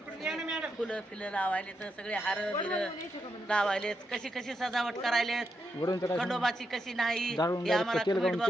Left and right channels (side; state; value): both; normal; correlation 0.83